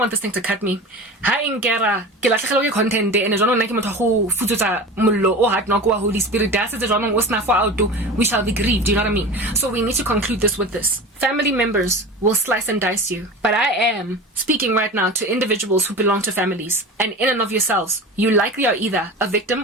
this thing to cut me. Ha inkera ke latlhegelwa ke content and jwanong nna ke motho go futsutsa mollo o hard knock wa Holy Spirit da se jwanong o sna for out we shall be grieved, do you know what I mean? So we need to conclude this with this. Family members will slice and dice you, but I am speaking right now to individuals who belong to families, and in and of yourselves, you likely are either a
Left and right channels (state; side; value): normal; both; correlation 0.32